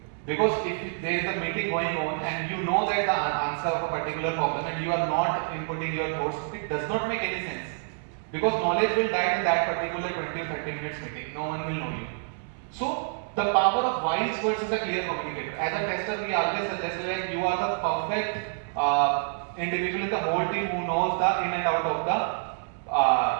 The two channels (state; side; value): silent; left; 60 dB below the other